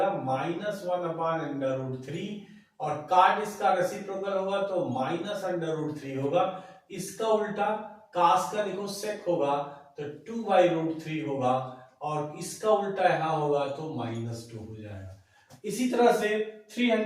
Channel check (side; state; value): both; identical; correlation 1.00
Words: -1/√3 और काट इसका रेसिप्रोकल होगा तो -√3 होगा। इसका उल्टा कास का देखो सेक होगा तो 2/√3 होगा और इसका उल्टा यहां होगा तो -2 हो जाएगा। इसी तरह से